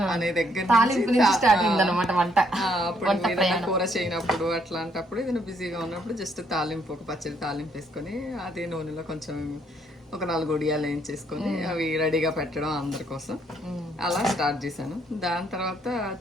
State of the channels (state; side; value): normal; both; correlation 0.70